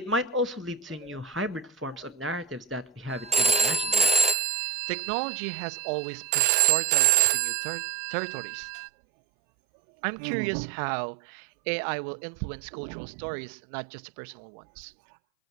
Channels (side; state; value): left; drops out; at 4.4 s